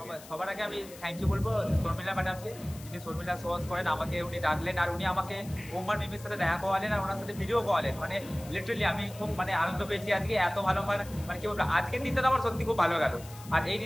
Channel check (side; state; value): left; noise; hiss, 18 dB below the sound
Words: সবার আগে আমি থ্যাংক ইউ বলবো শর্মিলা ম্যাডামকে, যিনি শর্মিলা সোয়াস করেন, আমাকে উনি ডাকলেন আর উনি আমাকে ওমার মিমির সাথে দেখা করালেন আর ওনার সাথে ভিডিও করালেন। মানে লিটারালি আমি খুব মানে আনন্দ পেয়েছি আজকে, এত ভালো মানে কি বলবো, আজকের দিনটা আমার সত্যি খুব ভালো গেল আর এই